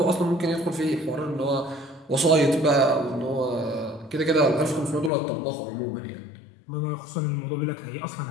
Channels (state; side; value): drops out; right; at 5.1 s